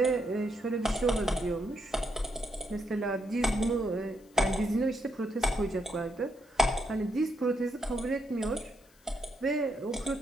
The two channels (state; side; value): noise; left; hiss, 30 dB below the sound